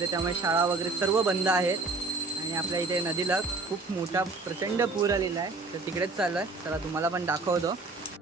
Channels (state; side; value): quieter; left; 3.6 dB